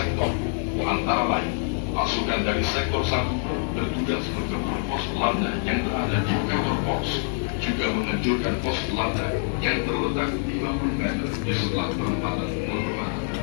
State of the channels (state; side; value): silent; right; 61 dB below the other